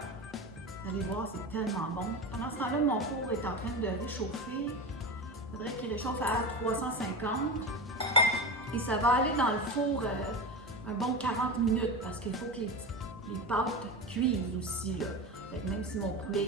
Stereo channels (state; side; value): normal; both; correlation 0.23